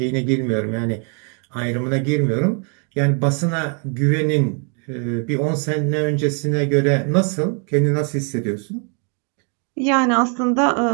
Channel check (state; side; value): quieter; left; 40.0 dB